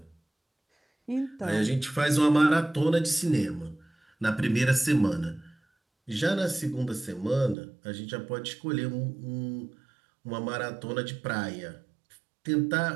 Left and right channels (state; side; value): drops out; left; at 7.6 s